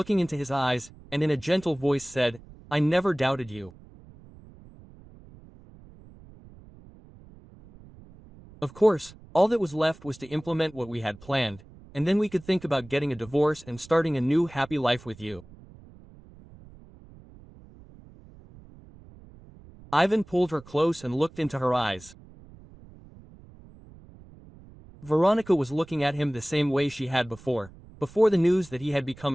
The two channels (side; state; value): right; noise; rumble, 22 dB below the sound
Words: into his eyes, and in a gentle voice said, "I never doubted you." Of course, all that was left was to implement what we had planned, and then we could think about getting a divorce and starting a new happy life with you. Ivan pulled her close and looked into her eyes. Veronica was looking at him the same way she had before the news that he had become